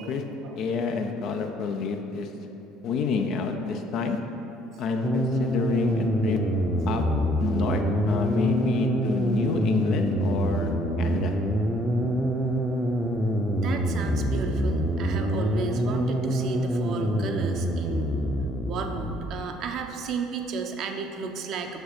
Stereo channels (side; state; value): both; normal; correlation 0.63